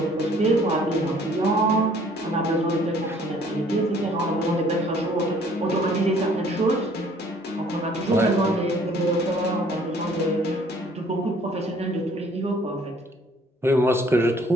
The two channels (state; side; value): normal; both; correlation 0.58